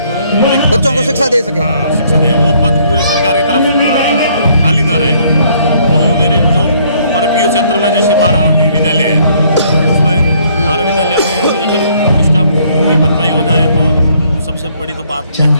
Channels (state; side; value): inverted; both; correlation -0.65